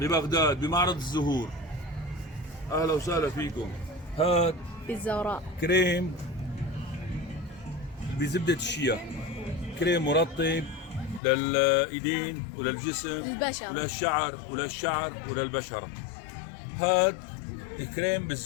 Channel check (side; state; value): right; drops out; at 11.2 s